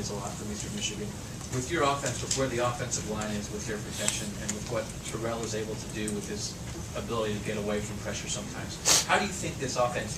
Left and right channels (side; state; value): both; identical; correlation 1.00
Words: a lot from Eastern Michigan. With your offense, with where the offensive line is, with their protection, and with what Terrell is able to do with his ability to get away from pressure sometimes, how do you think this